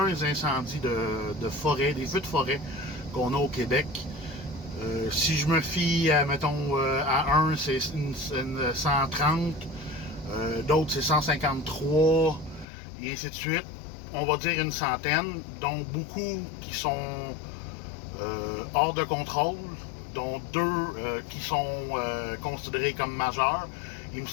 incendies de forêt, des feux de forêt qu'on a au Québec. Si je me fie, mettons, à un, c'est une 130, d'autres c'est 153, et ainsi de suite. On va dire une centaine, dont beaucoup qui sont hors de contrôle, dont deux qui sont considérés comme majeurs. Il me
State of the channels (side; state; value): right; drops out; at 12.7 s